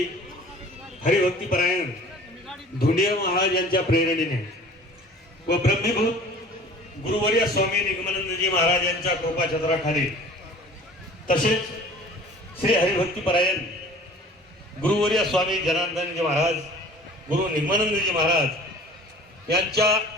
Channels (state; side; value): normal; both; correlation 0.46